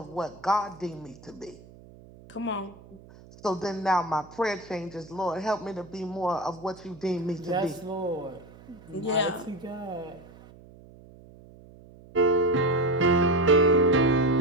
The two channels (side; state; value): right; noise; hum, 22 dB below the sound